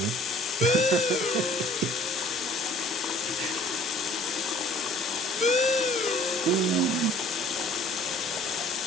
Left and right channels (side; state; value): both; normal; correlation 0.53